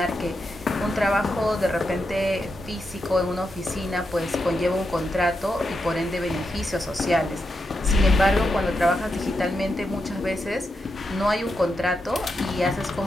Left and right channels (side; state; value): both; normal; correlation 0.86